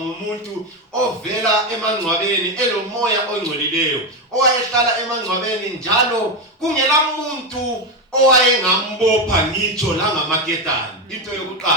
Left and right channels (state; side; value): normal; both; correlation 0.10